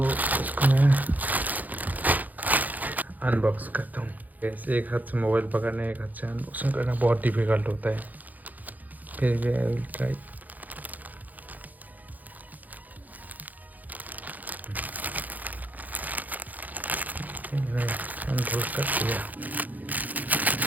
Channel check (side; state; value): left; late; 0.081 ms